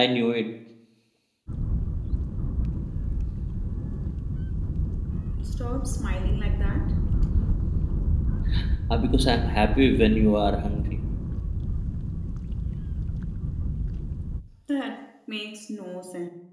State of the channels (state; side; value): identical; both; correlation 1.00